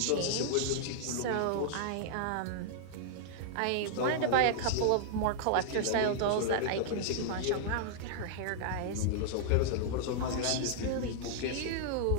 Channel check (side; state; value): both; different; correlation -0.01